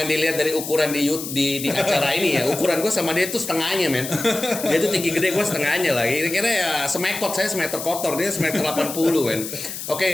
dilihat dari ukuran di acara ini ya. Ukuran gue sama dia tuh setengahnya, men. Dia tuh tinggi gede, gue setengahnya lah. Kira-kira ya semekot, saya semeter kotor, dia semeter 80, men.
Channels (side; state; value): left; noise; hiss, 8 dB below the sound